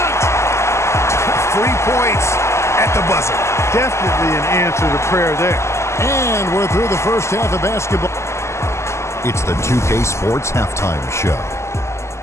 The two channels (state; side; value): late; right; 0.13 ms